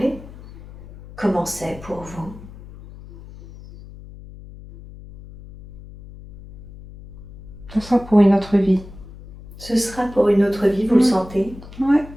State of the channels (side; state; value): left; noise; hum, 17 dB below the sound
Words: comment c'est pour vous? Ce sera pour une autre vie. Ce sera pour une autre vie, vous le sentez? Ouais.